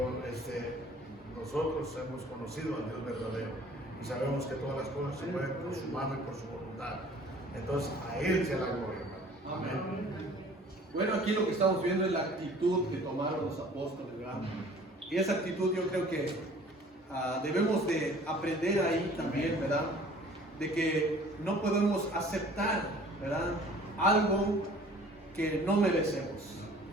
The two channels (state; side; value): normal; both; correlation 0.50